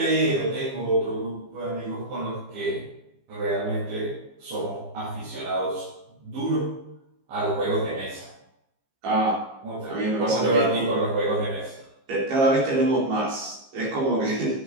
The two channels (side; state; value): left; late; 15 ms